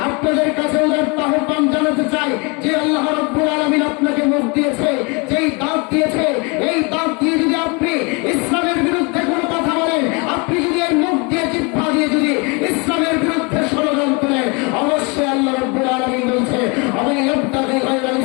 আপনাদের কাছে উদারতা আহ্বান জানাতে চাই যে আল্লাহ রাব্বুল আলামিন আপনাকে মুখ দিয়েছে, যেই দাঁত দিয়েছে, এই দাঁত দিয়ে যদি আপনি ইসলামের বিরুদ্ধে কোনো কথা বলেন, আপনি যদি এর মুখ দিয়ে জিহ্বা দিয়ে যদি ইসলামের বিরুদ্ধে ষড়যন্ত্র করেন, অবশ্যই আল্লাহ রাব্বুল আলামিন বলছে আমি ইবতাগি গায়রাল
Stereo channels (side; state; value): right; quieter; 30.2 dB